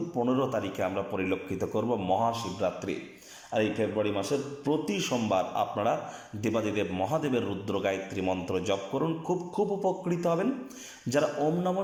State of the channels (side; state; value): both; identical; correlation 1.00